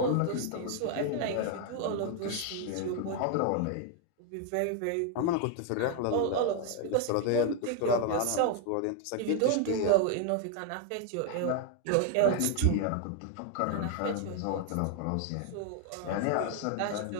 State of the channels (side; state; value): both; different; correlation 0.00